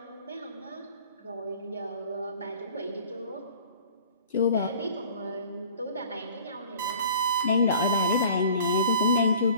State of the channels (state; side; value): inverted; both; correlation -0.47